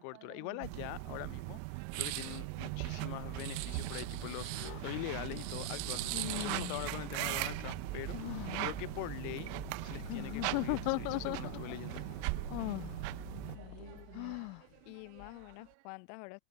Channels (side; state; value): both; different; correlation 0.00